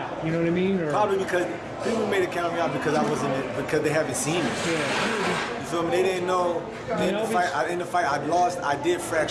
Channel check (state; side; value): identical; both; correlation 1.00